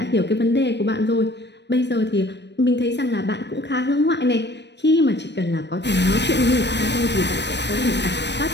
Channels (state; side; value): late; right; 0.50 ms